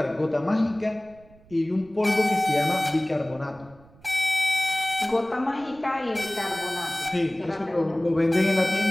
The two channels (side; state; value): right; noise; rumble, 25 dB below the sound